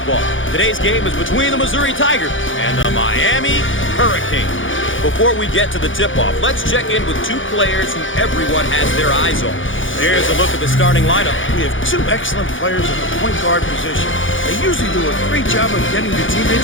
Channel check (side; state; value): right; late; 0.57 ms